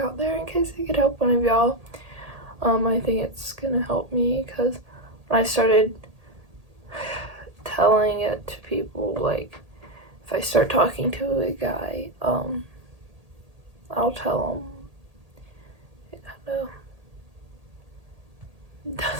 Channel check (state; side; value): late; left; 1.8 ms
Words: there in case it could help one of y'all. I think it's gonna help me, because when I started telling it to people, like, if I start talking to a guy, I'll tell him it kind of